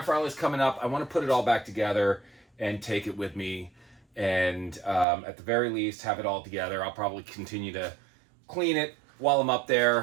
Rally's coming up. I want to put it all back together and take it with me. And at the very least, have it all together. I'll probably continue to clean it while I'm up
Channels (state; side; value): drops out; left; at 5.1 s